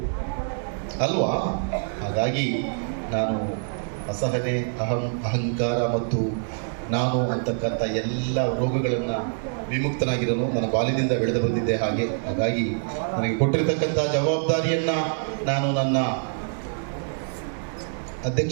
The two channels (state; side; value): silent; left; digital silence